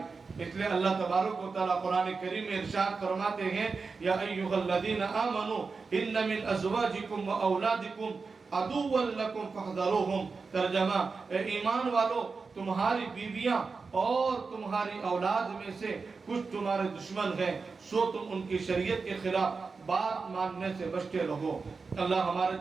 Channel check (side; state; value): left; quieter; 4.6 dB